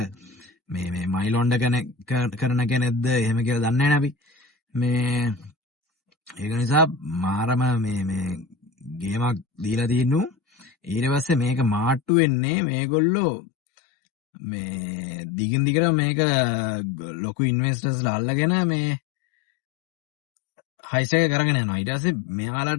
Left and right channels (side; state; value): right; drops out; at 12.1 s